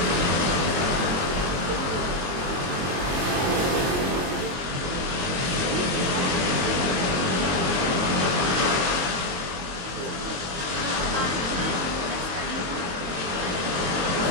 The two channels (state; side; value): late; left; 23 ms